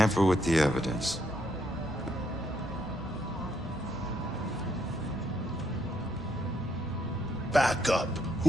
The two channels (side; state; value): both; normal; correlation 0.75